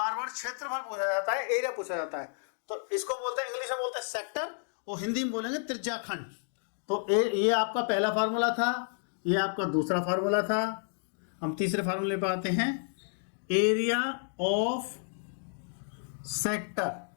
बार क्षेत्रफल पूछा जाता है, एरिया पूछा जाता है, तो इसको बोलते हैं, इंग्लिश में बोलते हैं सेक्टर, और हिंदी में बोलेंगे त्रिज्या खंड। तो ये आपका पहला फार्मूला था, ये आपका दूसरा फार्मूला था। हम तीसरे फार्मूले पर आते हैं, area of sector,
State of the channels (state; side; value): silent; right; digital silence